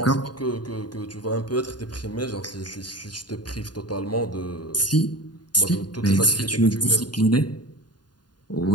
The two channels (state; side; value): late; right; 0.70 ms